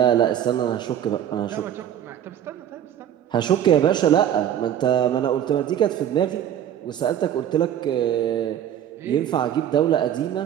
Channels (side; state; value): left; quieter; 10.3 dB